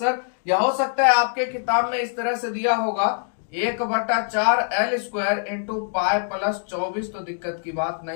या हो सकता है आपके किताब में इस तरह से दिया होगा 1/4 L square into pi plus 24, तो दिक्कत की बात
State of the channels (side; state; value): right; silent; digital silence